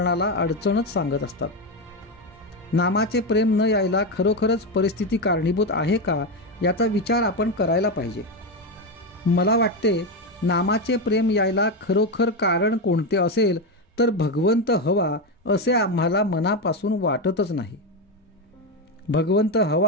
अडचणच सांगत असतात. नामाचे प्रेम न यायला खरोखरच परिस्थिती कारणीभूत आहे का, याचा विचार आपण करायला पाहिजे. मला वाटते नामाचे प्रेम यायला खरोखर कारण कोणते असेल तर भगवंत हवा असे आम्हाला मनापासून वाटतच नाही. भगवंत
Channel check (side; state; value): both; normal; correlation 0.11